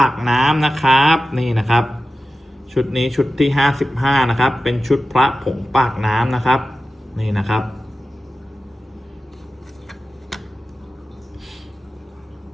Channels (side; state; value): both; normal; correlation 0.94